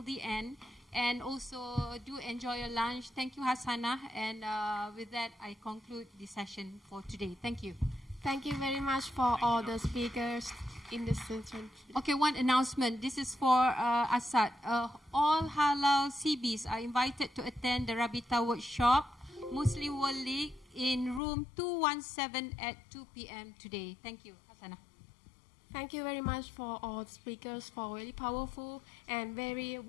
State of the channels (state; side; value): drops out; right; at 21.2 s